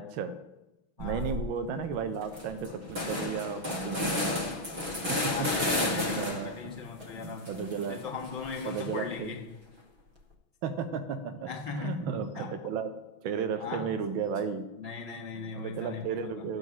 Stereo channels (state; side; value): late; left; 6.2 ms